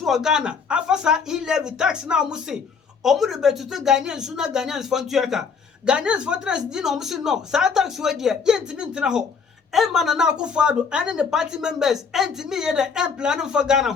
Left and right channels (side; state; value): right; quieter; 5.7 dB